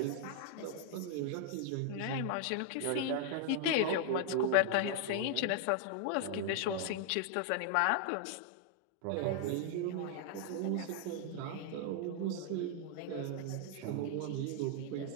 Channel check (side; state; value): both; different; correlation -0.01